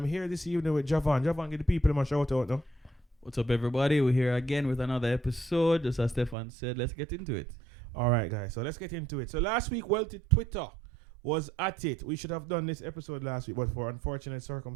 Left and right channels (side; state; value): left; drops out; at 6.4 s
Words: here this evening with Javon. Javon, get the people in my shout out, no? What's up, everybody? We're here again with another episode. Just as Stefan said, let's get into it. All right, guys. So let's get into it. So last week, Twitter was at it. We should have done this episode last week, but for unfortunate